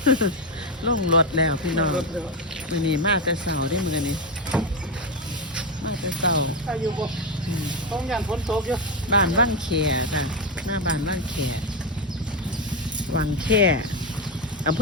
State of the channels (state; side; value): normal; both; correlation 0.09